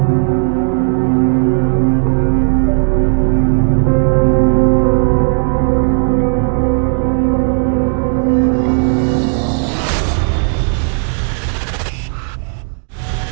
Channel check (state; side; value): silent; left; 62 dB below the other